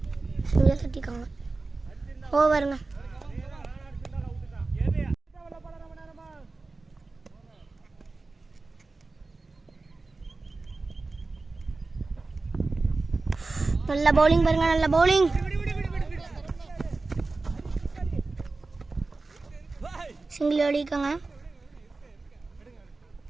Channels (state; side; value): quieter; left; 3.6 dB